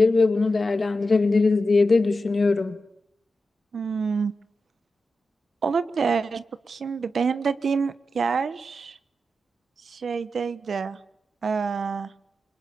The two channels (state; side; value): normal; both; correlation 0.90